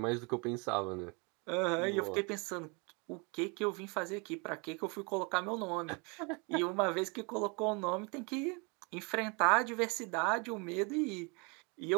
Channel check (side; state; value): left; quieter; 31.3 dB